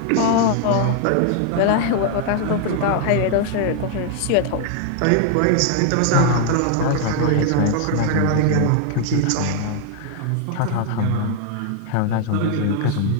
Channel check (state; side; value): different; both; correlation 0.00